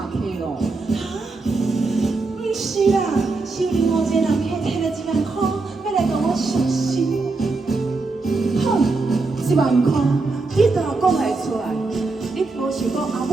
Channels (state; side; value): quieter; left; 3.7 dB